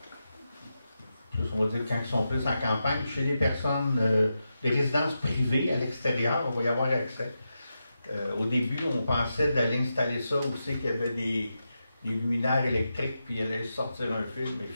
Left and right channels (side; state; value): both; inverted; correlation -0.88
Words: on va dire quand ils sont plus en campagne, chez les personnes, les résidences privées à l'extérieur, on va y avoir accès. Au début, on pensait d'aller installer ça où c'est qu'il y avait des luminaires électriques, puis il allait sortir un fil, mais